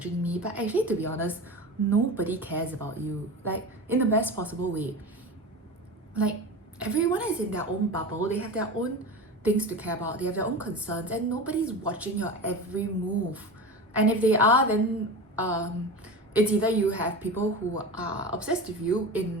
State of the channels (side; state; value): both; normal; correlation 0.28